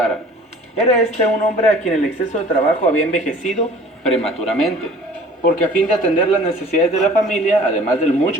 Era este un hombre a quien el exceso de trabajo había envejecido prematuramente, porque a fin de atender las necesidades de la familia, además del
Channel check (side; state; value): both; normal; correlation 0.48